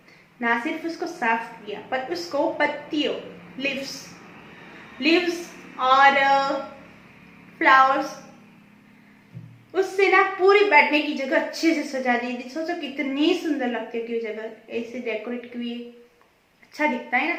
ना सिर्फ उसको साफ किया, पर उसको पत्तियों, लिव्स और फ्लावर्स, उससे ना पूरी बैठने की जगह अच्छे से सजा दी थी। सोचो कितनी सुंदर लगती है कि जगह ऐसे डेकोरेट की हुई, अच्छा दिखता है ना।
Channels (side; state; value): both; identical; correlation 1.00